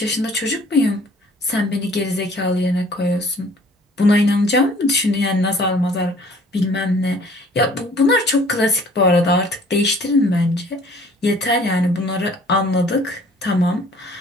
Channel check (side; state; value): both; normal; correlation 0.54